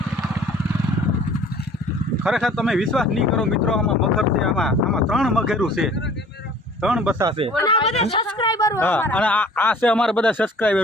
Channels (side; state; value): both; normal; correlation 0.50